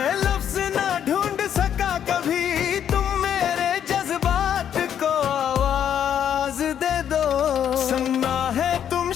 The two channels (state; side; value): quieter; right; 9.3 dB